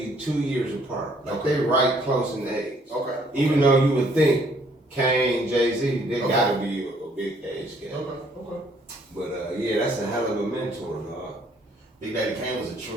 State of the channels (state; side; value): normal; both; correlation 0.64